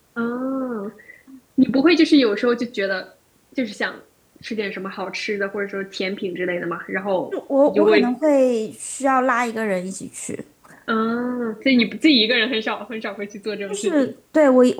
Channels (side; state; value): both; identical; correlation 1.00